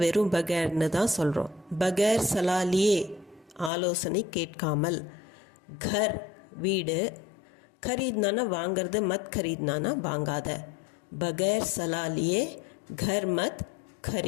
வெறும் பகேர்னு தான் சொல்கிறோம். பகேர் சலா லியே ஆலோசனை கேட்காமல். கர் வீடு, खरीदना வாங்கிறது, மத் खरीदना வாங்காத. பகேர் சலா லியே கர் மத்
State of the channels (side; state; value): right; drops out; at 3.7 s